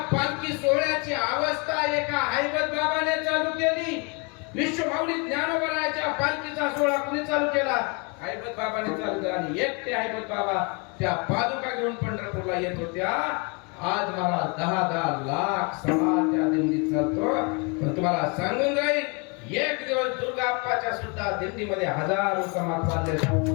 पालखी सोहळ्याची अवस्था एका हैबत बाबाने चालू केली. विश्वमाऊली ज्ञानोबराच्या पालखीचा सोहळा कुणी चालू केला? हैबत बाबाने चालू केला. आणि एकटे हैबत बाबा त्या पादुका घेऊन पंढरपूरला येत होत्या. आज मला 10-10 लाख समाज त्या दिंडीत चालतो. पण तुम्हाला सांगून जाईल, एक दिवस दुर्गाप्पाच्या सुद्धा दिंडीमध्ये हजारो समाज चालले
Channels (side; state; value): right; quieter; 31.9 dB